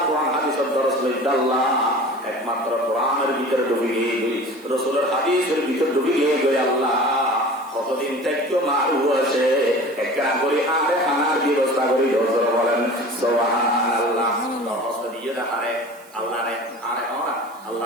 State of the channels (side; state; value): right; noise; hiss, 26 dB below the sound